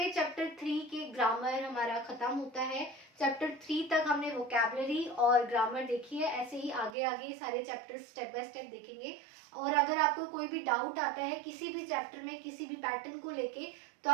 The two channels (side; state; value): left; drops out; at 7.0 s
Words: चैप्टर 3 के ग्रामर हमारा खत्म होता है। चैप्टर 3 तक हमने वोकैबुलरी और ग्रामर देखी है, ऐसे ही आगे आगे सारे चैप्टर स्टेप बाय स्टेप देखेंगे। और अगर आपको कोई भी डाउट आता है किसी भी चैप्टर में, किसी भी पैटर्न को लेके, तो